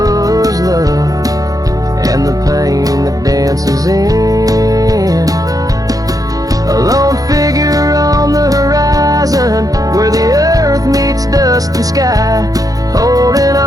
love and the pain that dances in. A lone figure on the horizon where the earth meets dust and sky, holding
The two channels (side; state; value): left; late; 0.17 ms